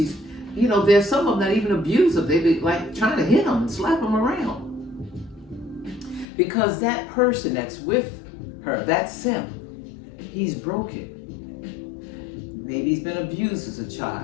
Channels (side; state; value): right; drops out; at 6.2 s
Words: There's some of them that even abuse him. They be like trying to hit him and slap him around. Because that person that's with her, that's him, he's broken. Maybe he's been abused as a